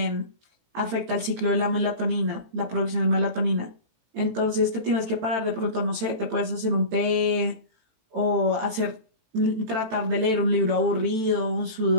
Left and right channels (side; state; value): left; late; 18 ms